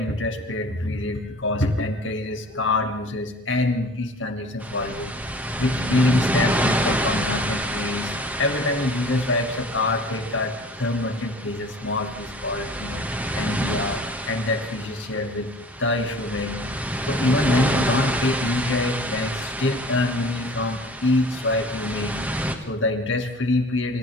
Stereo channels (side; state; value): both; normal; correlation 0.46